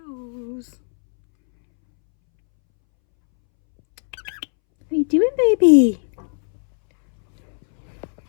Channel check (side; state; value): right; silent; 66 dB below the other